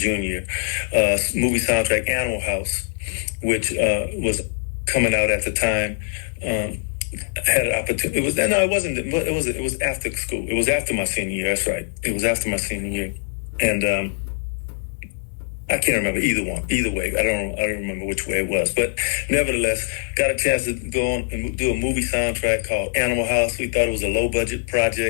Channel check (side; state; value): right; silent; digital silence